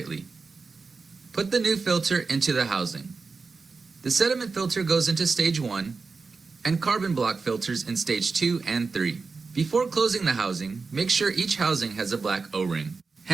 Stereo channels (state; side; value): quieter; left; 4.5 dB